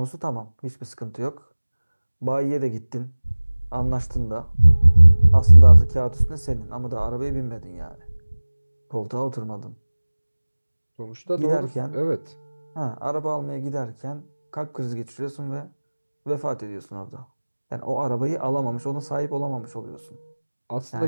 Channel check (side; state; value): both; inverted; correlation -1.00